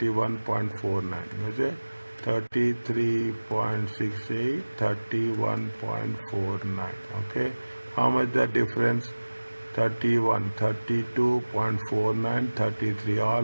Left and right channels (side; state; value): both; inverted; correlation -1.00